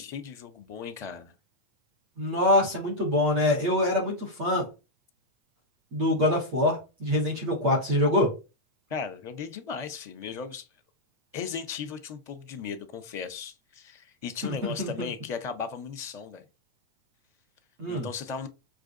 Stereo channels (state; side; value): late; left; 8.5 ms